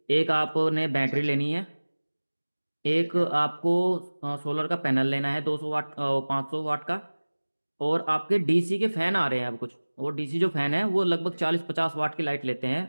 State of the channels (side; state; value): both; inverted; correlation -1.00